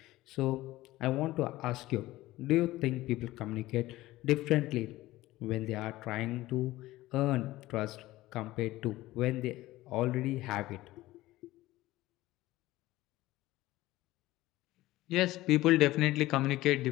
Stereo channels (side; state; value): right; quieter; 17.2 dB